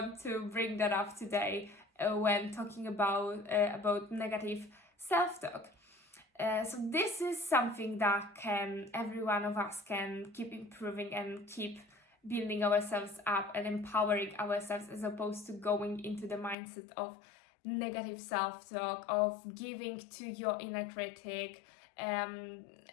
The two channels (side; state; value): right; drops out; at 16.6 s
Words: to bring that up today when talking about negative self-talk. So this is something that every one of us can keep improving and keep building ourselves up and empowering ourselves, as opposed to going into the mindset of negative self-talk, of giving to your inner critic,